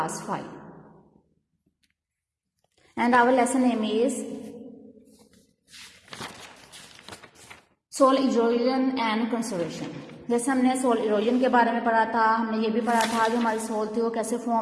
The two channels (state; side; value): identical; both; correlation 1.00